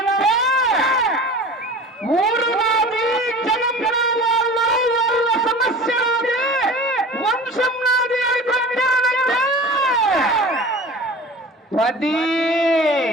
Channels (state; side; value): normal; both; correlation 0.38